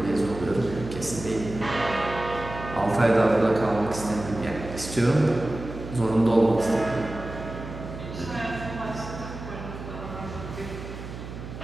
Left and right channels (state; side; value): noise; right; hum, 11 dB below the sound